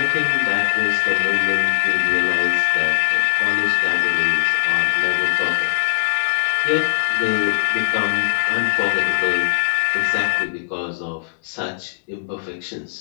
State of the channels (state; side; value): silent; right; digital silence